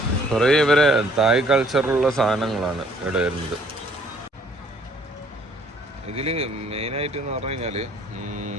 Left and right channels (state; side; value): normal; both; correlation 0.60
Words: കുറേ ഇവരെ തായ് കൾച്ചറുള്ള സാധനങ്ങളാണ് ഇവിടെ വരുന്നത്. ഇതിൽ മെയിനായിട്ട് എന്ന് പറഞ്ഞു കഴിഞ്ഞാൽ